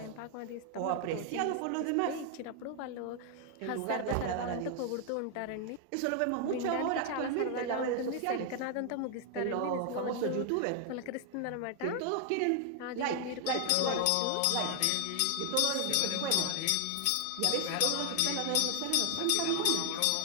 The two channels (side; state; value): both; different; correlation 0.00